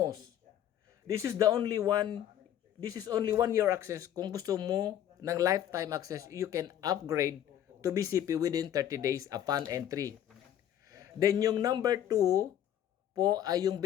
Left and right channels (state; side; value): quieter; right; 10.8 dB